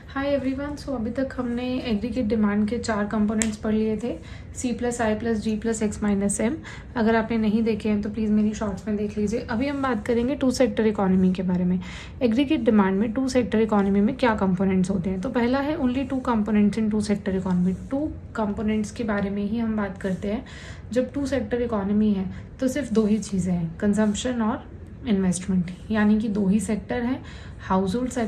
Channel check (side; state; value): both; identical; correlation 1.00